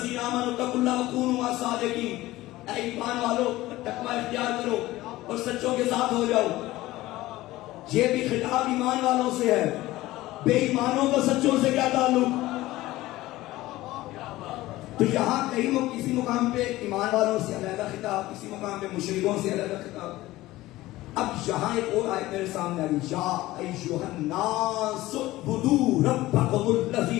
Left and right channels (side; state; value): right; quieter; 17.4 dB